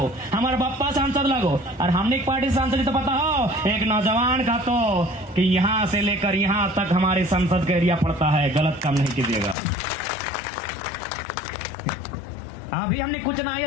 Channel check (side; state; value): right; drops out; at 9.6 s